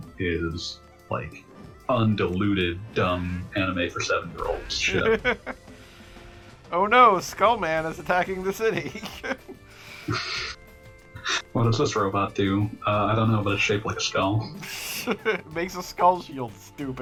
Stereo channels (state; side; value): identical; both; correlation 1.00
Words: is like undiluted dumb anime for 7-year-olds shit. Oh no, Skullman is attacking the city. What does this robot do? I don't know, but it's shaped like a skull. It makes a skull shield,